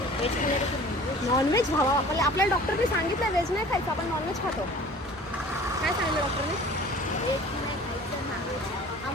खाल्लं की नॉनव्हेज? नॉनव्हेज भावा, आपल्याला डॉक्टरने सांगितलं व्हेज नाही खायचं, आपण नॉनव्हेज खातो. काय सांगितलं डॉक्टरने? व्हेज नाही खायचं, नॉनव्हेज.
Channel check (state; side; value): normal; both; correlation 0.46